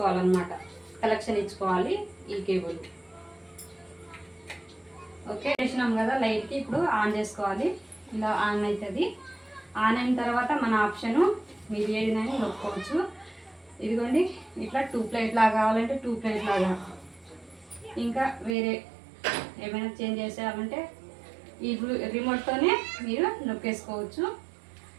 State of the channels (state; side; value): drops out; left; at 18.6 s